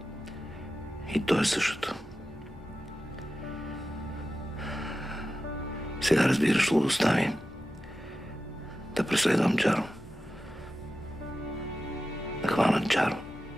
И то е същото. Сега разбираш лудостта ми да преследвам Джаро. Да хвана Джаро.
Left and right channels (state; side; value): normal; both; correlation 0.92